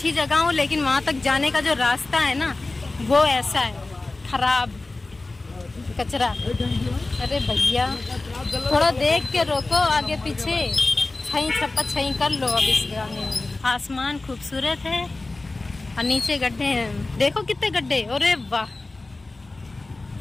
जगह हूँ लेकिन वहाँ तक जाने का जो रास्ता है ना वो ऐसा है, खराब, कचरा। अरे भैया थोड़ा देख के रोको, आगे पीछे छई छप्पा छई कर लो। अब इस गाने में आसमान खूबसूरत है और नीचे गड्ढे हैं। देखो कितने गड्ढे, अरे वाह,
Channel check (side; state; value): right; quieter; 3.2 dB